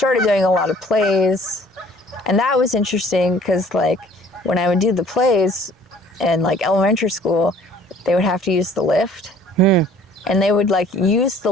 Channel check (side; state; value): both; normal; correlation 0.54